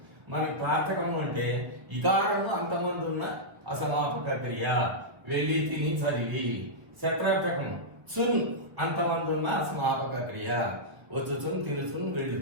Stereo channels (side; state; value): left; late; 1.3 ms